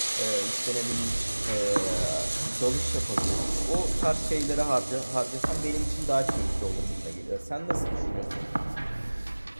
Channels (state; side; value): inverted; both; correlation -1.00